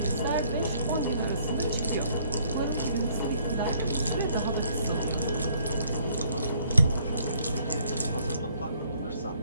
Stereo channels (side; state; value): both; inverted; correlation -0.64